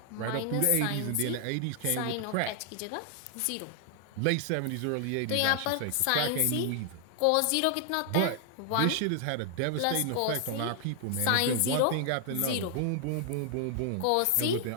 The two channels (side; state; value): both; different; correlation 0.00